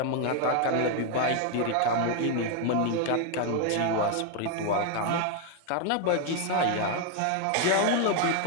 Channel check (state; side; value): different; both; correlation 0.00